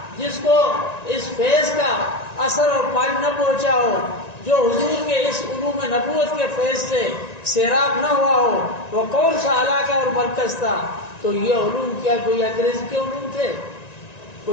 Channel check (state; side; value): late; right; 1.9 ms